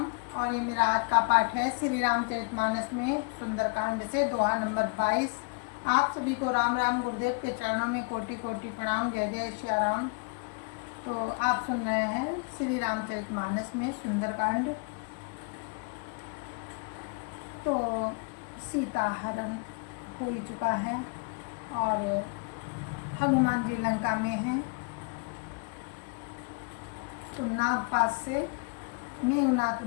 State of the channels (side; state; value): right; quieter; 35.3 dB